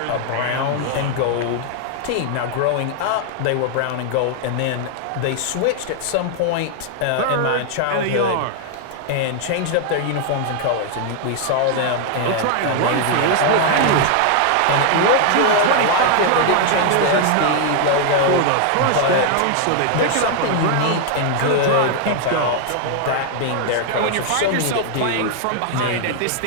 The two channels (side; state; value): both; different; correlation 0.00